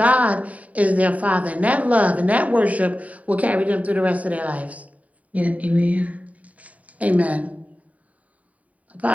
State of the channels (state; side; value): late; left; 0.069 ms